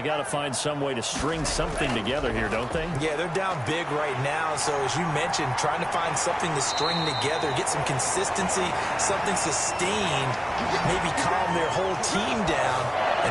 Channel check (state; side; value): identical; both; correlation 1.00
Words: got to find some way to string something together here, don't they? Yeah, they're down big right now. So as you mentioned, trying to find something to string together, get some consistency, something sustained, maybe calm their whole team down